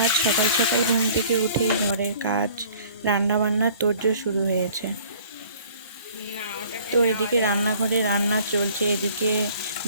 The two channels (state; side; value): inverted; both; correlation -0.53